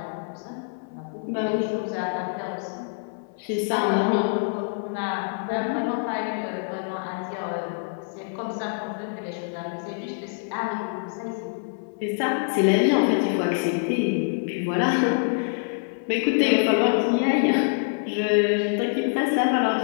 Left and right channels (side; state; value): right; silent; 61 dB below the other